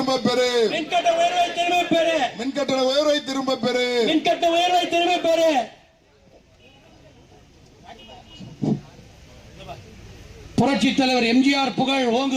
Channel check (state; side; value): identical; both; correlation 1.00